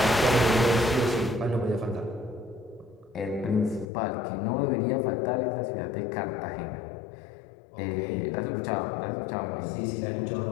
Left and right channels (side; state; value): right; drops out; at 3.9 s